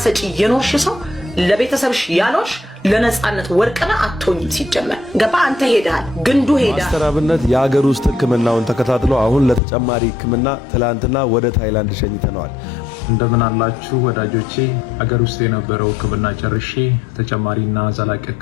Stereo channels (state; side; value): drops out; right; at 9.6 s